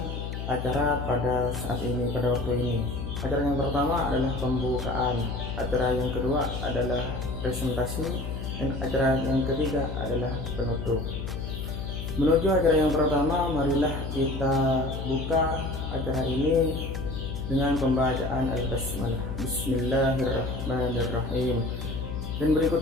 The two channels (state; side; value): noise; left; hum, 5 dB below the sound